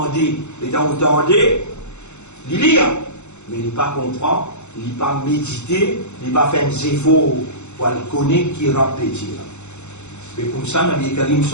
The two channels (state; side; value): late; right; 0.83 ms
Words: et dans vous tendez, il lit, mais il n'est pas comprend, il n'est pas médité, il n'est pas fait un efforts pour le connaître qui répète. Et comme ça, Nabi Karim